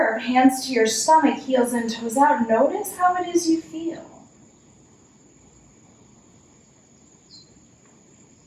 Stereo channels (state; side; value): identical; both; correlation 1.00